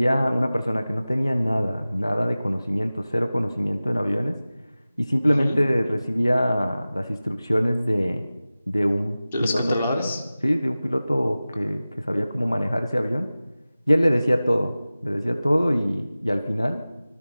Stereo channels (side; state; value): both; inverted; correlation -0.97